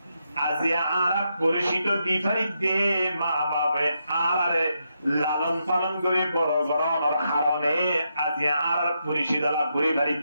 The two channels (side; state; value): both; inverted; correlation -0.82